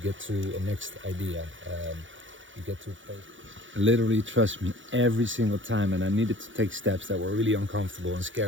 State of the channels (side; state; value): left; late; 0.56 ms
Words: get to a next idea, you get to a place. Literally, trust me, every single time, and I needed to take steps that were really uncomfortable and